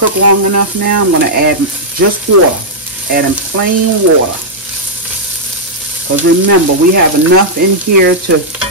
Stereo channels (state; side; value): normal; both; correlation -0.08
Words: long enough now. I'm going to add just water, adding plain water. Because remember, we have enough in here to